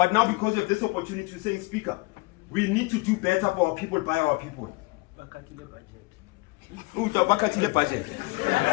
now because of this opportunity to say, Speaker, we need to do better for our people, by our people. But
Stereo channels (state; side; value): quieter; right; 25.4 dB